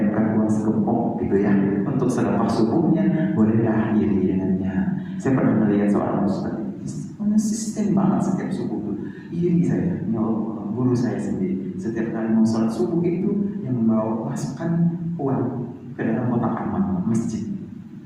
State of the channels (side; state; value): both; identical; correlation 1.00